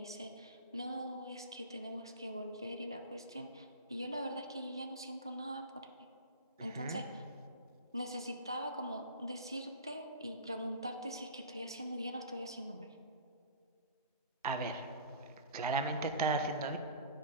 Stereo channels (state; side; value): inverted; both; correlation -0.36